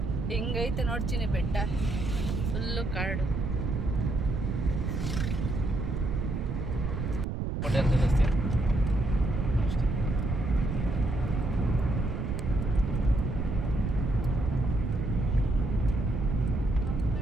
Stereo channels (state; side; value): noise; right; rumble, 1 dB below the sound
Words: ಹೆಂಗೈತೆ ನೋಡ್ತೀನಿ ಬೆಟ್ಟ ಫುಲ್ಲು ಕಾಡು ಹೋಟೆಲ್ ತಿಳಿಸ್ತೀಯ ಅಷ್ಟೇ